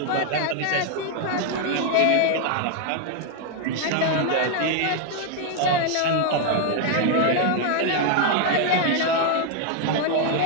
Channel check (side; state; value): both; different; correlation 0.01